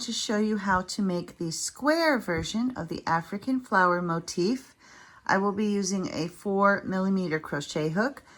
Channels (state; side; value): identical; both; correlation 1.00